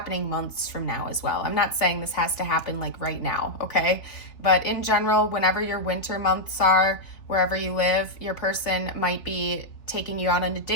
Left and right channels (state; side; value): late; right; 3.3 ms